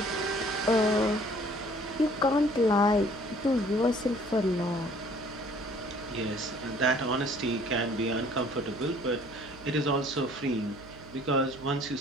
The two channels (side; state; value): right; noise; hum, 20 dB below the sound